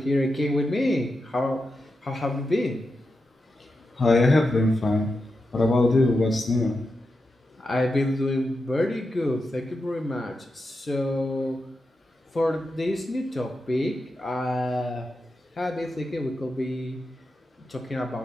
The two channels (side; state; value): both; normal; correlation 0.89